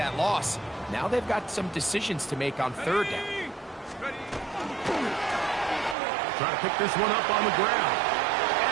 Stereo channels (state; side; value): drops out; left; at 6.0 s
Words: loss, now they've got some decisions to make on third down. Try to pick this one up on the ground.